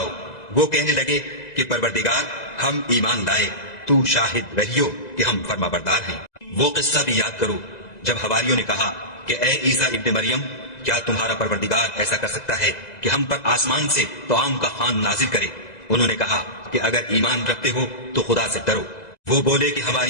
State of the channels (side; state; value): right; late; 2.0 ms